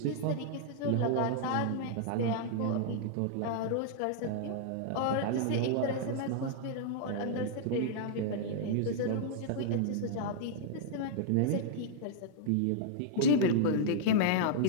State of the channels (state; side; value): different; both; correlation -0.01